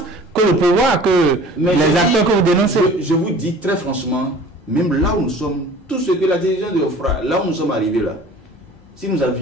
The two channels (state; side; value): normal; both; correlation 0.46